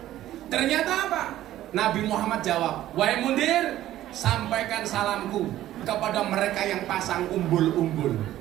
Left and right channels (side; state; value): left; quieter; 13.7 dB